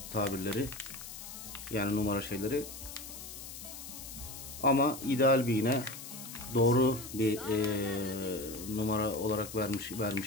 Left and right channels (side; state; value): left; noise; hiss, 11 dB below the sound